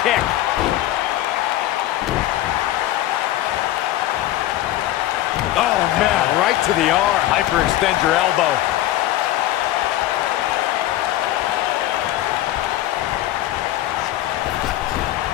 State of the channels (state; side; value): quieter; right; 14.5 dB